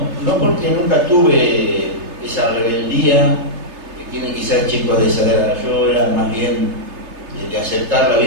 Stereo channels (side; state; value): left; late; 3.3 ms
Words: porque nunca tuve esa rebeldía que tienen quizás chicos de esa edad. Yo era más bien de aceptar la